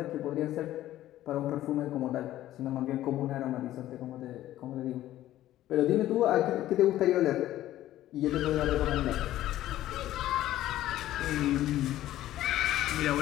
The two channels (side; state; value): right; quieter; 14.0 dB